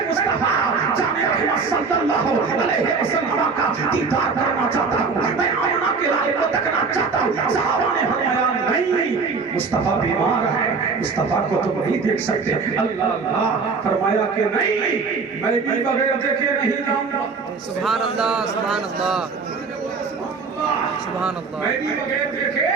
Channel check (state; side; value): quieter; left; 4.8 dB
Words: مصطفیٰ جامع رحمت صلی اللہ علیہ وسلم کا دیدار کرنا چاہتا ہوں میں آمنہ کے لال کو تکنا چاہتا ہوں صحابہ نے فرمایا نہیں مصطفیٰ بیمار ہے مصطفیٰ کو تم نہیں دیکھ سکتے اللہ اللہ فرمایا کہ نہیں میں بھی بغیر دیکھے نہیں جاؤں گا سبحان اللہ سبحان اللہ سبحان اللہ